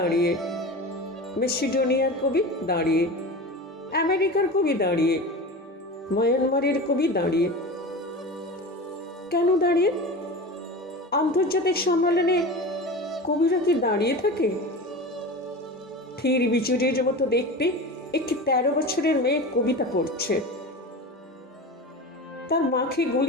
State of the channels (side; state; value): both; normal; correlation 0.30